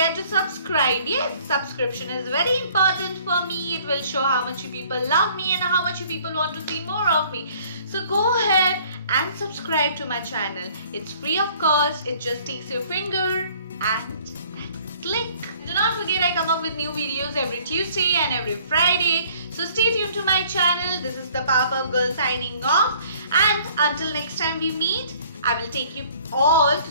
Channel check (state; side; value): inverted; both; correlation -0.56